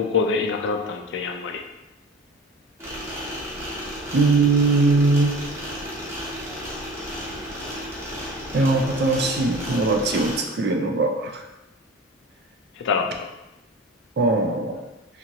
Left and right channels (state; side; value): normal; both; correlation 0.38